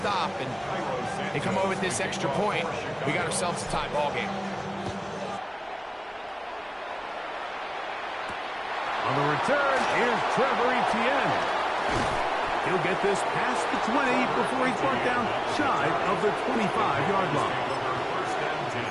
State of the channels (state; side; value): identical; both; correlation 1.00